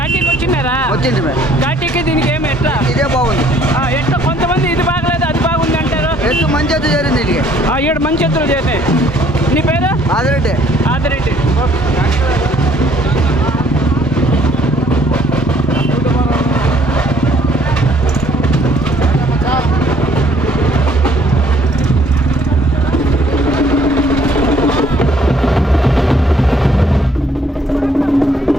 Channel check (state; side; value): normal; both; correlation 0.62